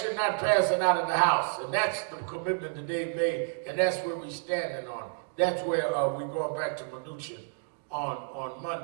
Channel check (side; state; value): left; silent; digital silence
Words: not pass it out of the House. And that's the commitment that they've made, and that's where we're standing on. That's where we're going back to minutia on